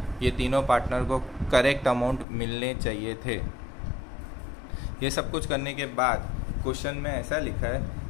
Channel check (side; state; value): right; drops out; at 2.2 s